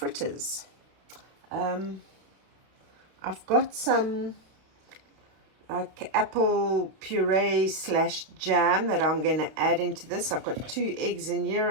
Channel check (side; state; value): left; late; 32 ms